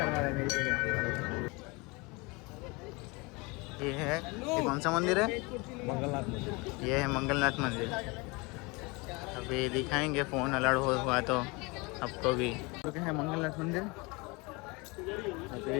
रहा है मेरी जगह। ये है, ये कौन सा मंदिर है? मंगलनाथ मंदिर। ये है मंगलनाथ मंदिर। अभी दिखाएंगे, फ़ोन अलर्ट हुआ तो आपको भी। तो क्या है मंगलनाथ मंदिर। अभी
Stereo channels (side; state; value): right; quieter; 26.6 dB